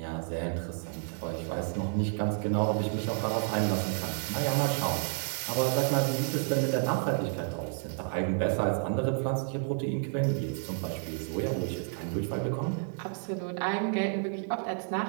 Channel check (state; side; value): silent; left; 57 dB below the other